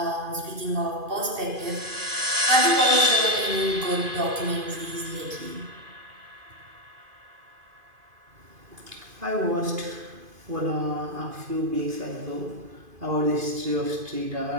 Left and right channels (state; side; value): late; left; 2.5 ms